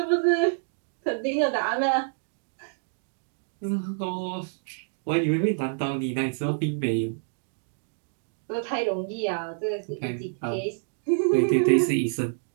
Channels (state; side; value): silent; left; digital silence